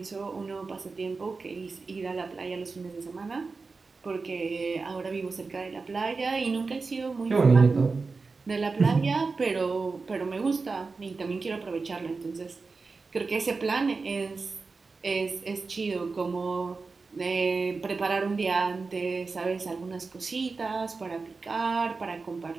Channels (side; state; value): left; quieter; 4.2 dB